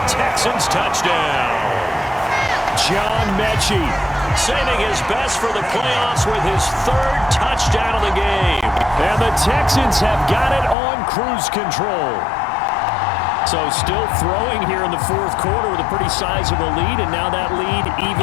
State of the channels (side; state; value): right; drops out; at 10.8 s